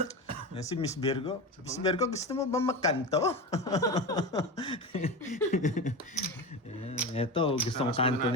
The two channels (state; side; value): normal; both; correlation 0.23